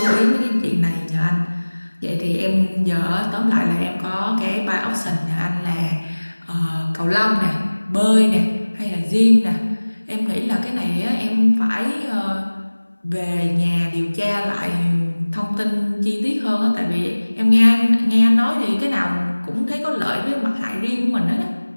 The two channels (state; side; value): inverted; both; correlation -1.00